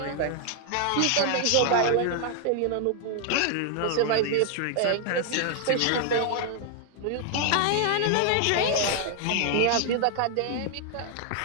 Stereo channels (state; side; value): different; both; correlation 0.00